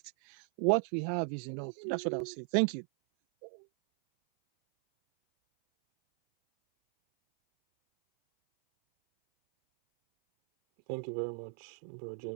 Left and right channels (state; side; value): silent; left; 54 dB below the other